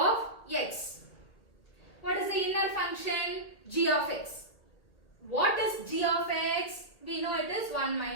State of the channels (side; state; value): right; late; 1.8 ms